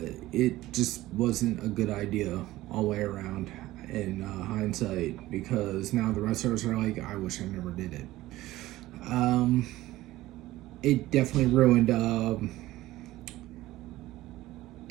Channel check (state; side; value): quieter; left; 16.6 dB